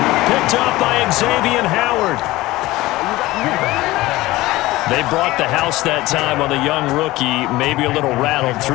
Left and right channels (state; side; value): quieter; right; 18.4 dB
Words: Picked up by Xavier Howard. They brought the house that time on the young rookie, maybe a little rattled